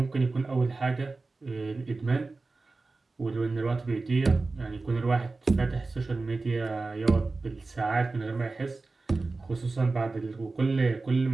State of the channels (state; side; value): quieter; left; 3.7 dB